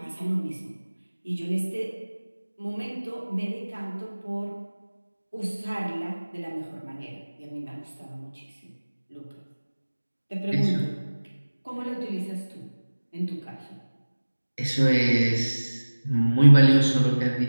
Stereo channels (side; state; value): both; inverted; correlation -1.00